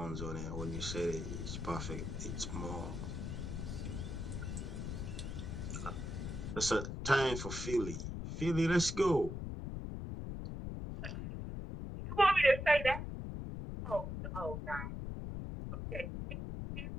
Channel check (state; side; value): noise; left; rumble, 5 dB below the sound